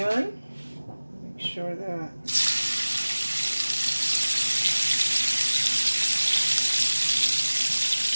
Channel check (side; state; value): both; inverted; correlation -1.00